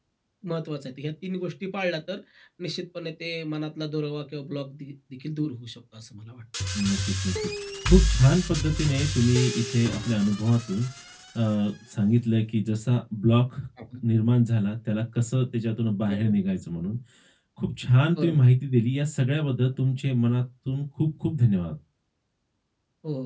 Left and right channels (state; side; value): identical; both; correlation 1.00